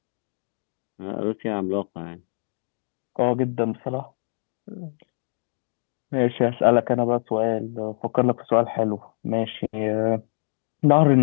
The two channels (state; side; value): silent; right; digital silence